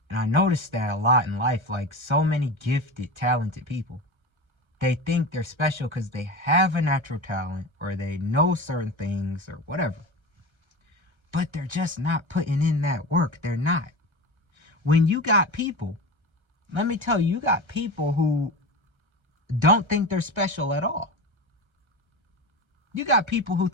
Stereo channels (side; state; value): left; late; 1.3 ms